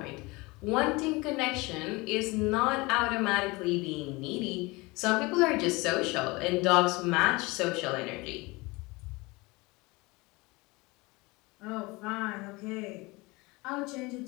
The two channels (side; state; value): right; quieter; 24.0 dB